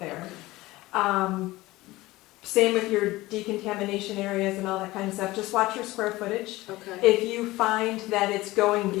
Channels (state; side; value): quieter; right; 19.0 dB